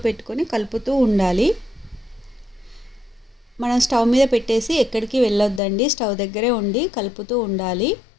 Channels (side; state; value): right; drops out; at 5.6 s